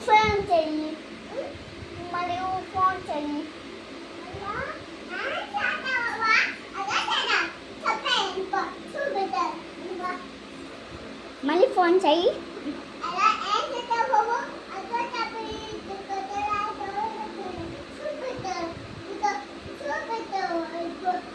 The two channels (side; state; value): both; identical; correlation 1.00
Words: మళ్ళీ ఫోన్ చెయ్యి.